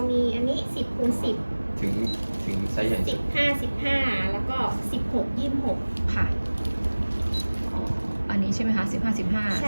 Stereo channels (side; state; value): both; inverted; correlation -1.00